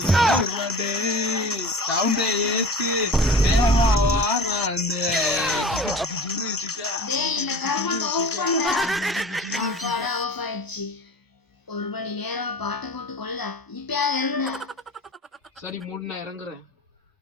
ஒரு மணி நேரம் பாட்டை போட்டு கொள்ள இப்பயாவது இறங்குடா. சரி மூணு நான் இறங்குறேன்.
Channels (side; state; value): both; normal; correlation 0.37